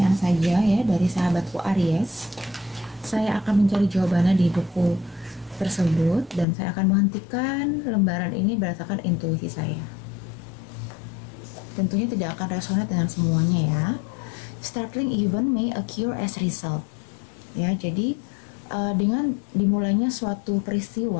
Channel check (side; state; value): right; drops out; at 6.5 s